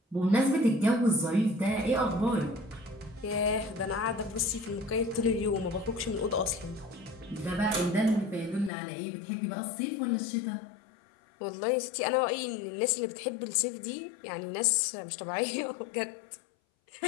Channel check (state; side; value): drops out; right; at 8.7 s